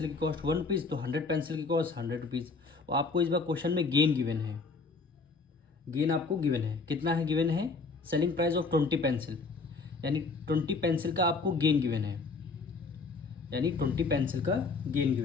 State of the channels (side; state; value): right; quieter; 4.1 dB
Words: की कॉस्ट 1 रुपीज़, तो 100 पेंसिल की कॉस्ट 100 रुपीज़। और आपको इस बार क्वेश्चन में गेन गिवन है, गेन आपको गिवन है, कितना है गिवन है? सेलिंग प्राइस ऑफ 20 पेंसिल, यानी 20 पेंसिल का आपको गेन गिवन है, यानी 20 पेंसिल का गेन